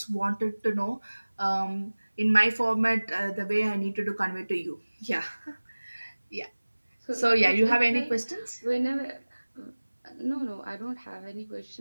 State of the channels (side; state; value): both; inverted; correlation -1.00